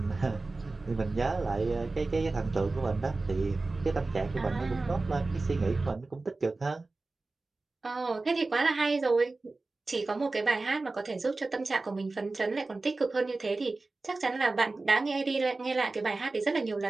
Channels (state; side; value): quieter; left; 3.4 dB